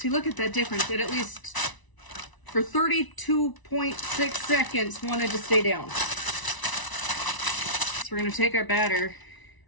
look at that difference. It at least for 32.6 seconds wanted to stay down. So we're gonna take our batter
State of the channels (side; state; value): right; late; 1.0 ms